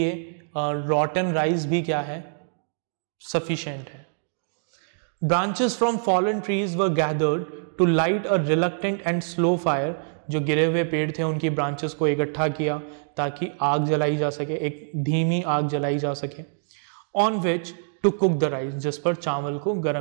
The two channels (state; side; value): silent; left; digital silence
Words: रॉटन राइस भी क्या है, सफिशिएंट है. Branches from fallen trees were gathered to light a reluctant and slow fire. जो गिरे हुए पेड़ थे उनकी ब्रांचेस को इकट्ठा किया ताकि आग जलाई जा सके, एक धीमी आग जलाई जा सके. On which to cook the rice, जिस पर चावल को